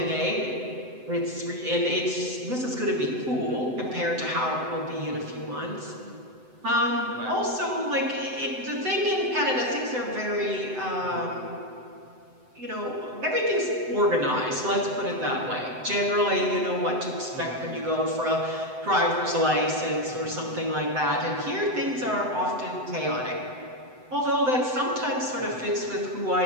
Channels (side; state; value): left; late; 7.9 ms